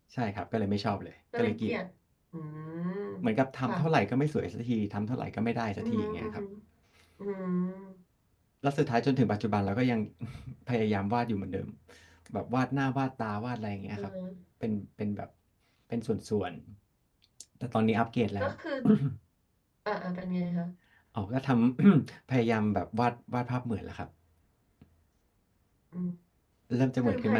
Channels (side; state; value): both; identical; correlation 1.00